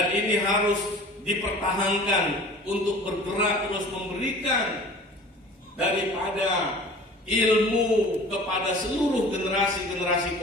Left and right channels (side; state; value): both; normal; correlation 0.43